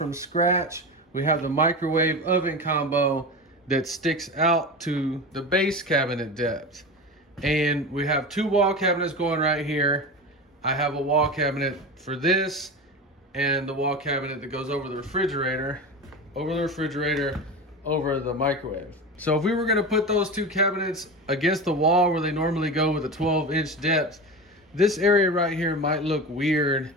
scratch. We have the microwave oven combo that sticks out to the base cabinet depth. And we have two wall cabinets going right here. I have a wall cabinet for this and the wall cabinet that goes over the refrigerator, over the microwave. So if we were going to put those two cabinets against the wall where they normally go with a 12-inch depth, this area right here might look weird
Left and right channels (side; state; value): both; normal; correlation 0.26